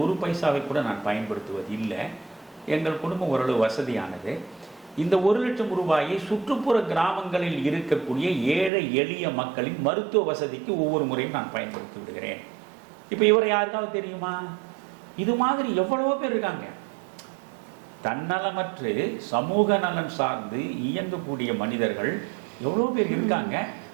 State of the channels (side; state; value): left; drops out; at 8.7 s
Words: 1 பைசாவை கூட நான் பயன்படுத்துவது இல்லை, எங்கள் குடும்பம் ஓரளவு வசதியானது, இந்த 1 லட்சம் ரூபாயை சுற்றுப்புற கிராமங்களில் இருக்கக்கூடிய ஏழை எளிய மக்களின் மருத்துவ வசதிக்கு ஒவ்வொரு முறையும் நான் பயன்படுத்தி விடுகிறேன். இப்போ இவரை யாருக்காவது தெரியுமா? இது மாதிரி எவ்வளவோ பேர் இருக்காங்க. தன்னலமற்று சமூக நலன் சார்ந்து இயங்கக்கூடிய மனிதர்கள் எவ்வளோ பேர் இருக்காங்க.